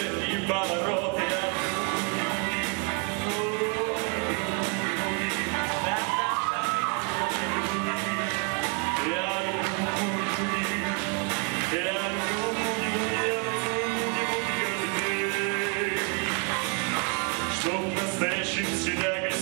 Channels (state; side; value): quieter; left; 37.4 dB